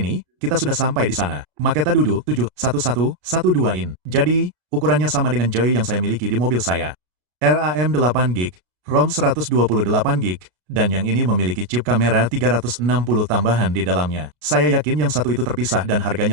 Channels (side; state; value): left; late; 33 ms